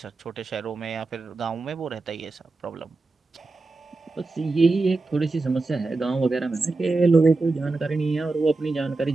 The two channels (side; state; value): left; quieter; 3.5 dB